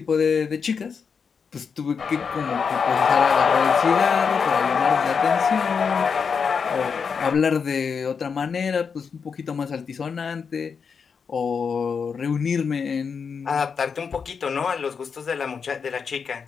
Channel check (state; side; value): quieter; right; 6.0 dB